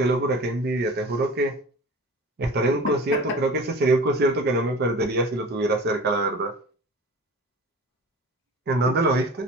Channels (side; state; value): both; normal; correlation 0.39